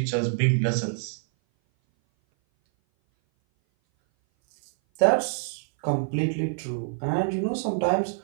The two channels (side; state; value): left; silent; 58 dB below the other